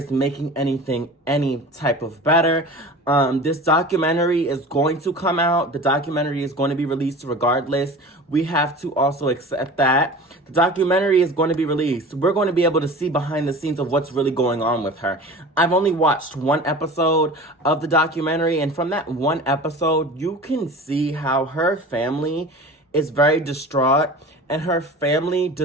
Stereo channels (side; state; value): both; normal; correlation 0.37